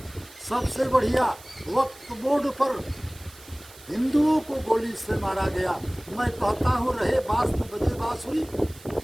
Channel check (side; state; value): right; noise; hiss, 21 dB below the sound